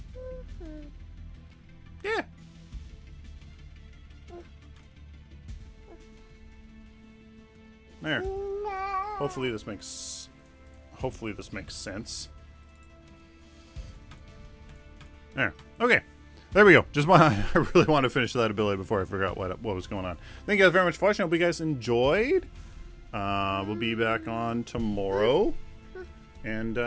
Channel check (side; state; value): both; identical; correlation 1.00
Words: Yeah. There. Hopefully this makes sense. There. Okay. There we go. I really want to finish that ability before I forgot what was going on. Thank you guys very much for watching. I hope you guys enjoyed. We'll be back on tomorrow. And